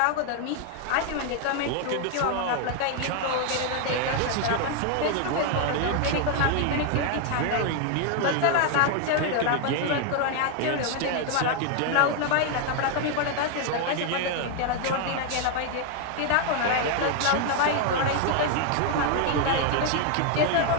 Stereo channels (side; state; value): both; different; correlation 0.00